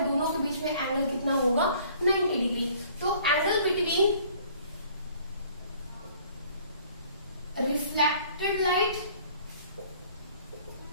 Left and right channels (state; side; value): inverted; both; correlation -0.55